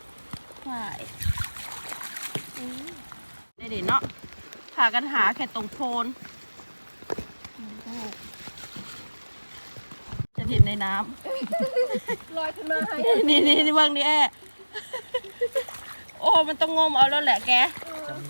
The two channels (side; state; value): both; inverted; correlation -1.00